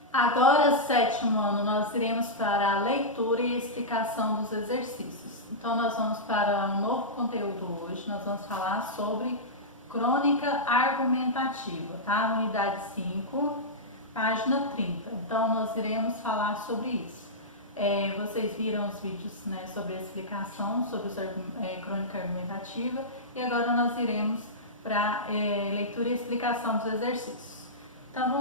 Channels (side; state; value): both; normal; correlation -0.12